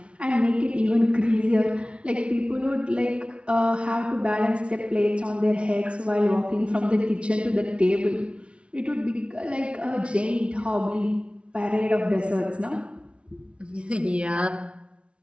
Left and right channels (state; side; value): late; left; 0.060 ms